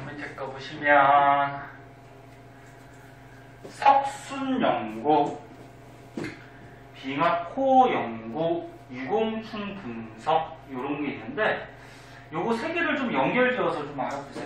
밑에 거 보시면 석순 연구, 빙하코 연구, 유공충 분석 이런 게 있는데 요거 세 개를 좀 연결지어서 좀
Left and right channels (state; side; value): identical; both; correlation 1.00